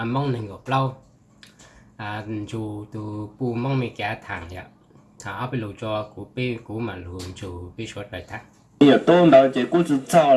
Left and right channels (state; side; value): identical; both; correlation 1.00